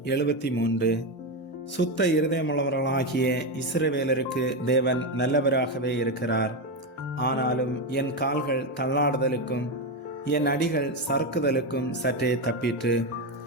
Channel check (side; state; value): both; normal; correlation 0.11